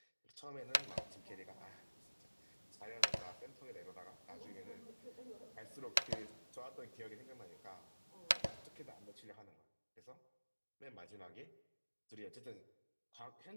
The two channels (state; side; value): inverted; both; correlation -1.00